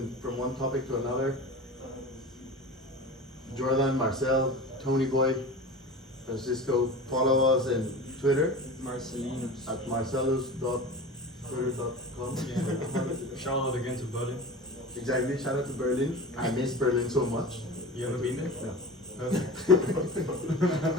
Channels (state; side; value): normal; both; correlation 0.34